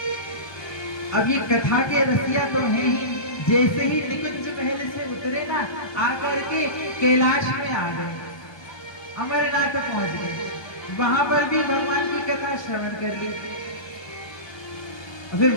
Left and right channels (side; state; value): right; late; 1.3 ms